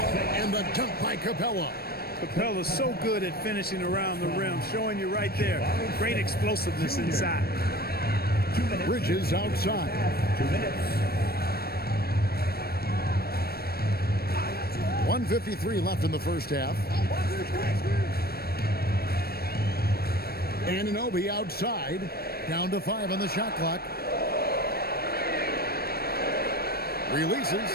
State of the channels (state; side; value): late; right; 0.45 ms